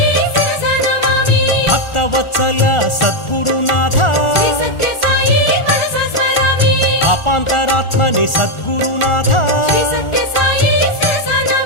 ಭಕ್ತವತ್ಸಲ ಸದ್ಗುರುನಾಥ ಅಪಾಂತರಾತ್ಮನೆ ಸದ್ಗುರುನಾಥ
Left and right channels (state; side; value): late; right; 1.4 ms